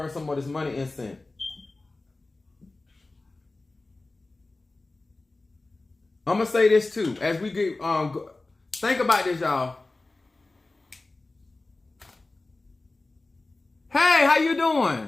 some of this money incense. I'm going to say this too. As we get, think about this, y'all. Hey, how you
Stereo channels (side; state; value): right; quieter; 3.2 dB